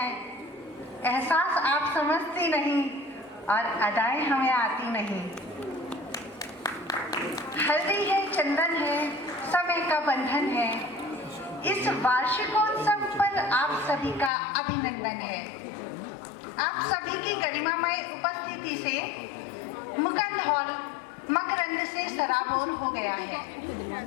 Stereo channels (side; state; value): right; drops out; at 14.3 s